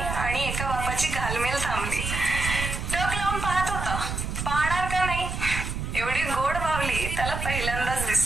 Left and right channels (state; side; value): noise; right; rumble, 4 dB below the sound